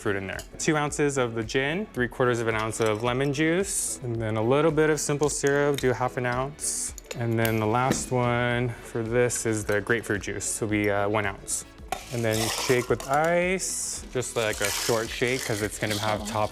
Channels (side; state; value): both; identical; correlation 1.00